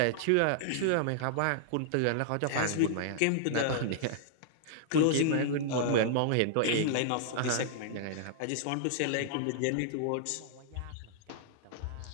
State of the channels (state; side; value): different; both; correlation -0.01